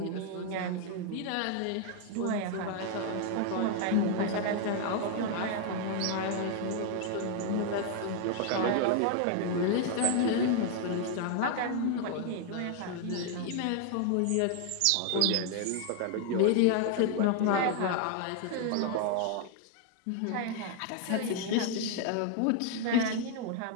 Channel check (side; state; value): both; different; correlation 0.00